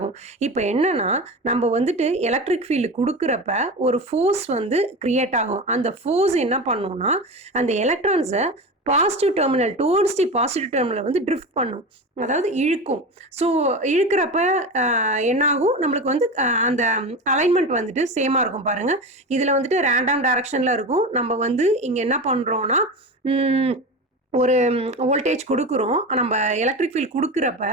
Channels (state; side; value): normal; both; correlation 0.26